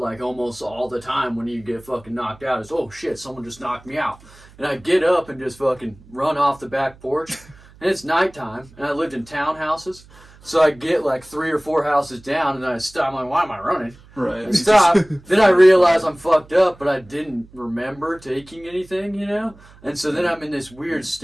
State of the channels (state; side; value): noise; right; hum, 24 dB below the sound